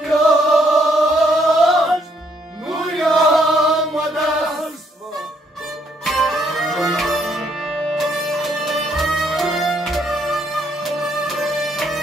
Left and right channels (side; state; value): both; normal; correlation 0.70